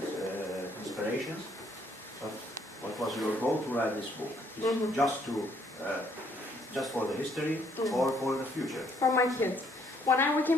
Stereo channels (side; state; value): both; normal; correlation 0.67